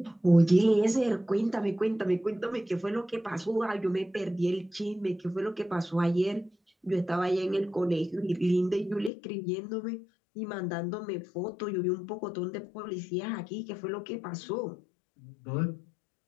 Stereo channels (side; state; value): right; drops out; at 9.1 s